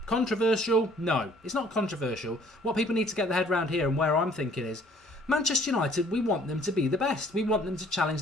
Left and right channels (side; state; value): both; normal; correlation 0.58